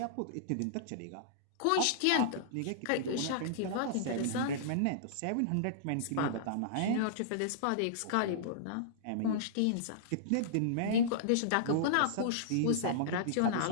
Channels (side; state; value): both; different; correlation -0.02